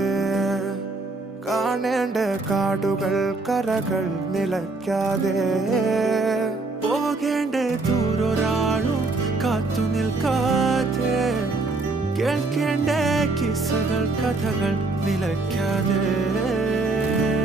കാണേണ്ട കാടുകൾ കരകൾ നിലയ്ക്കാതെ പോകേണ്ട ദൂരൊരാളും കാത്തു നിൽക്കാതെ കേൾക്കേണ്ട കിസ്സകൾ കഥകൾ നിലയ്ക്കാതെ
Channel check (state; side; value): quieter; left; 3.3 dB